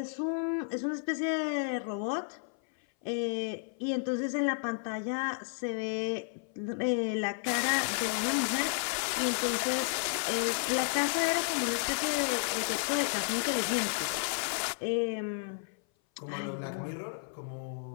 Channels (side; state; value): right; silent; 56 dB below the other